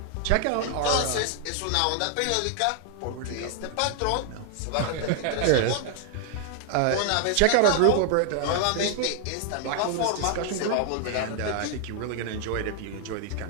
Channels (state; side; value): different; both; correlation 0.00